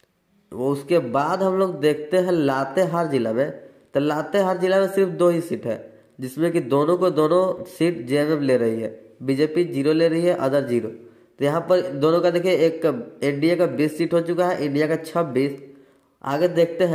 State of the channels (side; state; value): both; identical; correlation 1.00